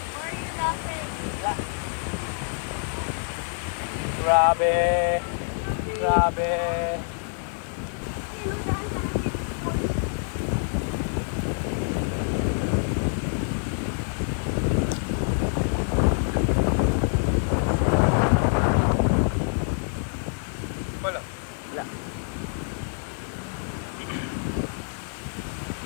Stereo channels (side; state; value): right; silent; 57 dB below the other